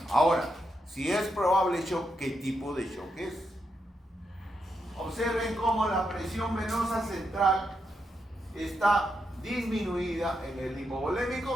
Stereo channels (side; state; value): both; normal; correlation 0.83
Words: Ahora, si es probable shock, ¿qué tipo de shock es? Observen cómo la presión venosa central está disminuida en el